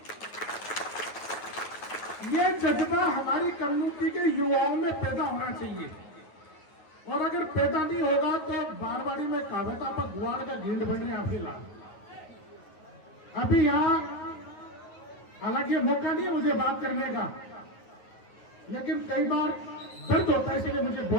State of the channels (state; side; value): late; right; 9.3 ms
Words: ये जज्बा हमारी कम्युनिटी के युवाओं में पैदा होना चाहिए, और अगर पैदा नहीं होगा तो बारवाड़ी में कहावत आप गुआड़ का गेंद बनने आप फिलहाल अभी यहां, हालांकि मौका नहीं है मुझे बात करने का, लेकिन कई बार दर्द होता है इसलिए मुझे